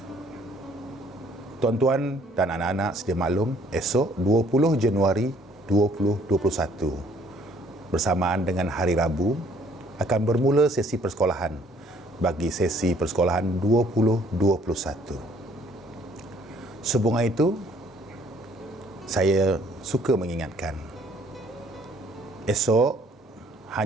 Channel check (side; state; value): both; normal; correlation 0.61